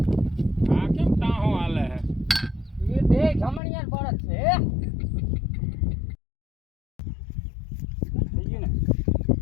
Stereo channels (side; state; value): right; drops out; at 3.6 s